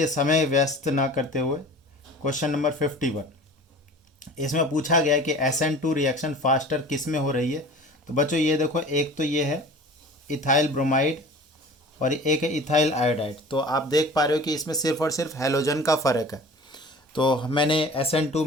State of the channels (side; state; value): both; normal; correlation 0.41